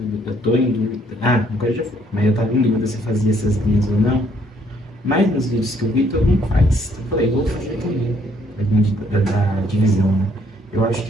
eu tô em dúvida. Agora já foi, mas eu tava em dúvida se eu fazia essas linhas ou não. Mas nos vídeos que eu vi, todo mundo faz. Então eu falei, vou fazer também. Da divisão, né? Eu acho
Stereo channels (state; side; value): normal; both; correlation 0.66